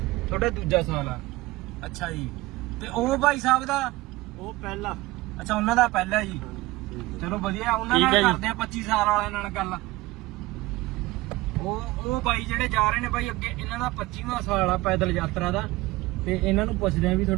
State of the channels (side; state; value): left; quieter; 19.7 dB